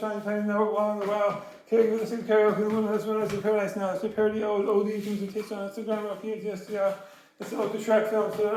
tiny, never long the while. Karaoke, the same karaoke, the woman that's one, paradise now. It's a parody old OD things and taste on Instagram, or PTSD. It's an ode to Shrek films, it's an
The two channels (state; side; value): identical; both; correlation 1.00